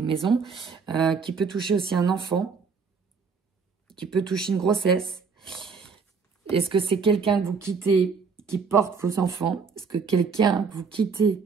maison, qui peut toucher aussi un enfant, qui peut toucher une grossesse. Est-ce que c'est quelqu'un que vous quittez qui porte vos enfants? Est-ce que quelqu'un que vous quittez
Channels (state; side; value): quieter; left; 5.3 dB